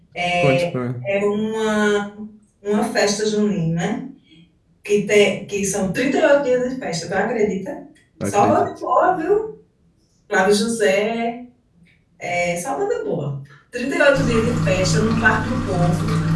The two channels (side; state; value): both; identical; correlation 1.00